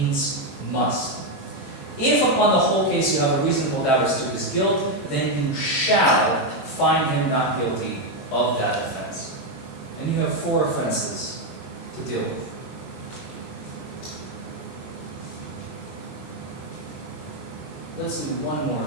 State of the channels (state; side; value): late; right; 21 ms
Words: must. If upon the whole case you have a reasonable doubt as to his guilt, then you shall find him not guilty of that offense. And you have 4 offenses to deal with. Let's do one